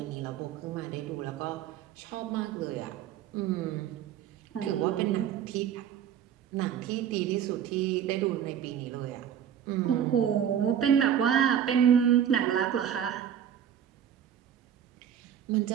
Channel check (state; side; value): quieter; left; 9.3 dB